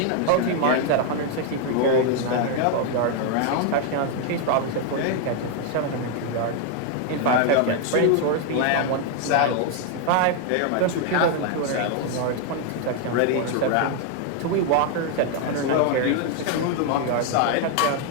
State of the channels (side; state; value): both; different; correlation 0.00